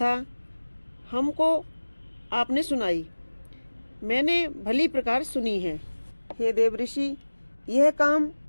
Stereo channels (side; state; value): both; inverted; correlation -1.00